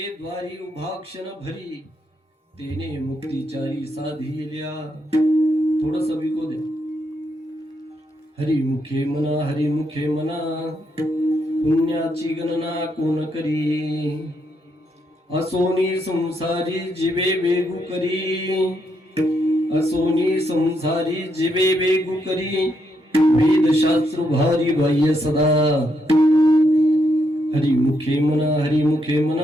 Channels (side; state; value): both; normal; correlation 0.78